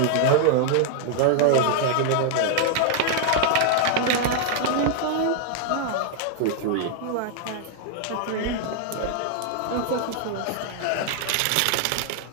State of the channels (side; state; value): both; different; correlation 0.00